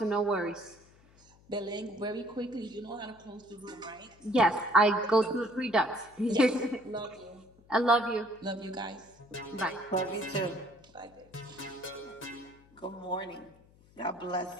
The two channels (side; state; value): left; noise; hum, 27 dB below the sound